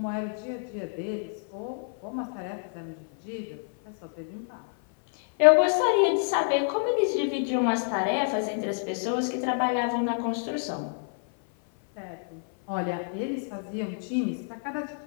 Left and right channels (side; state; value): right; silent; 56 dB below the other